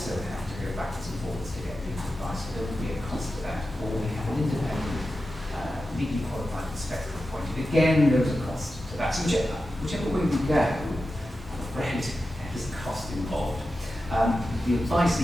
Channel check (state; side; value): normal; both; correlation 0.92